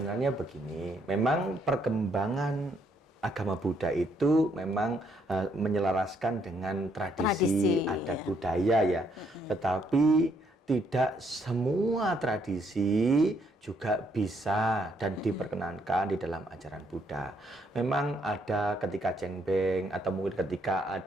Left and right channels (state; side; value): normal; both; correlation 0.71